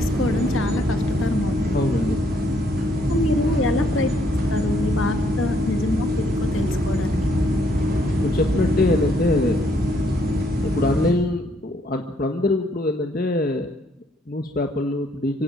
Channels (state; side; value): normal; both; correlation 0.69